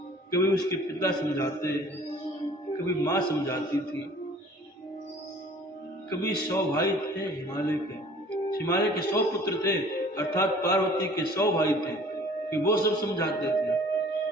कभी उसके पिता समझाते, कभी मां समझाती थी, कभी 100 भाई थे हिमालय के 100 पुत्र थे, अर्थात पार्वती के 100 भाई थे कि वो सब समझाते थे।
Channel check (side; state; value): both; normal; correlation 0.50